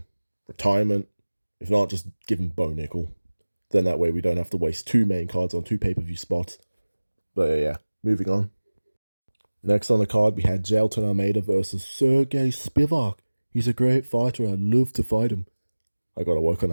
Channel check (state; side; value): inverted; both; correlation -1.00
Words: Retirement. If not, just give him Bo Nickel. Then that way we don't have to waste 2 main cards on 2 pay-per-view spots. But yeah, moving on. Next on the card, we had Jailton Almeida versus Sergey Spivak. He's a great fighter. I'd love to fight him. I gotta work on